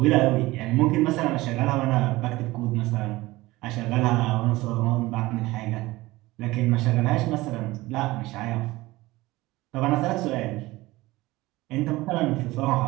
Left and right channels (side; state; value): left; quieter; 19.4 dB